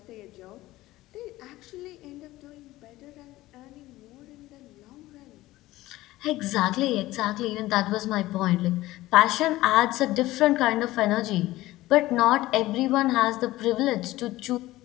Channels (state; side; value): quieter; right; 17.2 dB